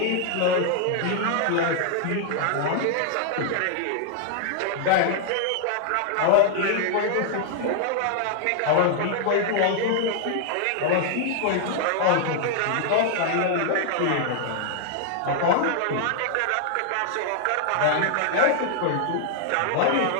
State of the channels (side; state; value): both; different; correlation 0.00